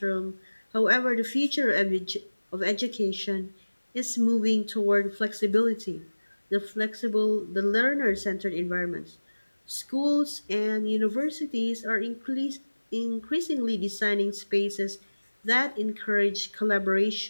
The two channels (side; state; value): both; inverted; correlation -1.00